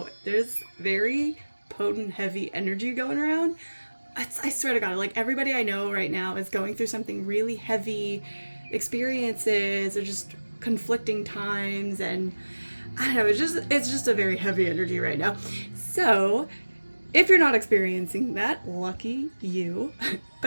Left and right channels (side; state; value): both; inverted; correlation -1.00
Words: there's very potent, heavy energy going around. I swear to God, like everybody I know right now is going through something really heavy, experiences or just conflicting times, and I don't know, it's just a very heavy energy right now. So if you're not experiencing that, lucky you.